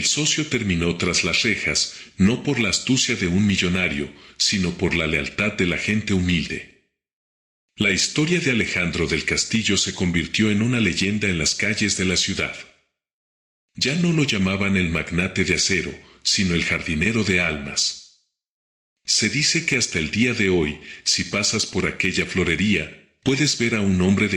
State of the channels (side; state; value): both; identical; correlation 1.00